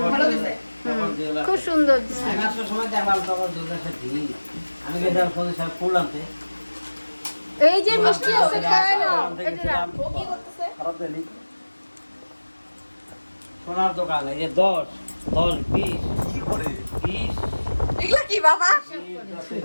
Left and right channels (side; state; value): both; inverted; correlation -1.00